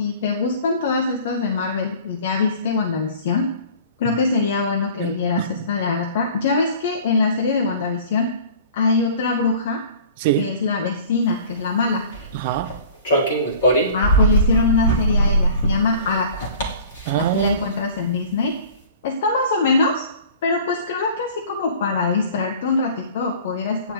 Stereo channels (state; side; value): inverted; both; correlation -0.45